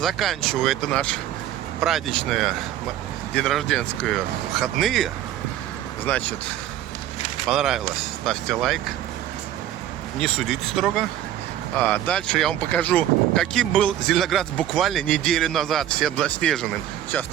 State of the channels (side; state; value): left; quieter; 12.1 dB